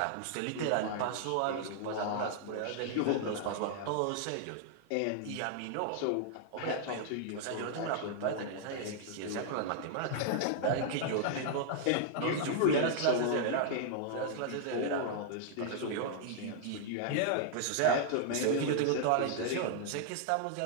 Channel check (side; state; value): both; different; correlation -0.01